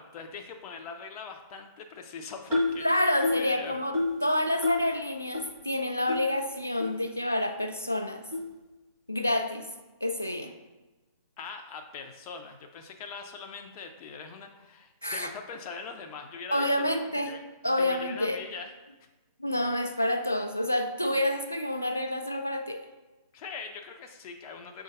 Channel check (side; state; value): both; inverted; correlation -0.80